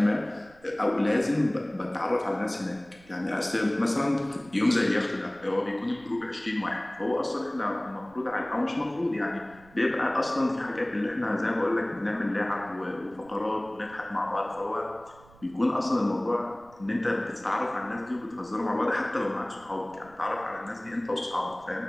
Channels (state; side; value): noise; right; rumble, 25 dB below the sound